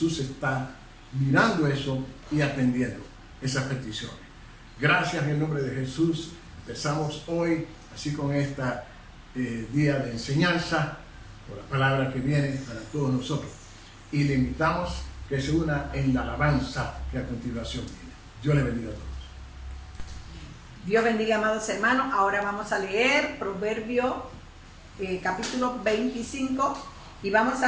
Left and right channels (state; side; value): identical; both; correlation 1.00